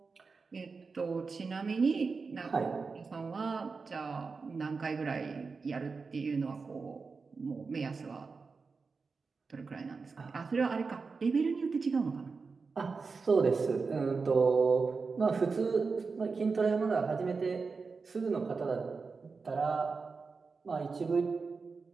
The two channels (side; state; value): left; quieter; 4.6 dB